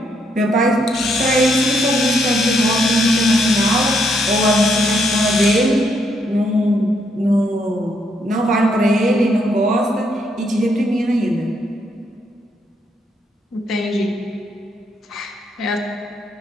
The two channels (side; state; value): both; normal; correlation 0.74